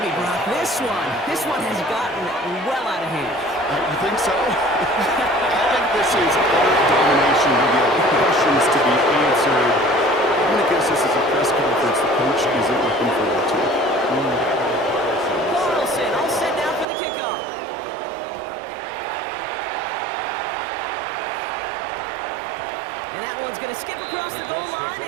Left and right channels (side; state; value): left; drops out; at 16.9 s